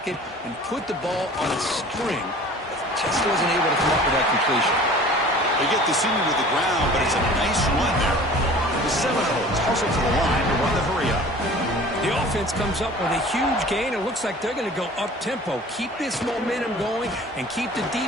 and put the ball on a string. Just wasn't able to come up with that completion. They get the senior to the ground, but it's a nice run there. The Seminoles hustle to the line to run the hurry up. The offense comes up with a huge gain. It looks like they're going to go up-tempo. Keep this momentum going and keep the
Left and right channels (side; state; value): both; normal; correlation 0.44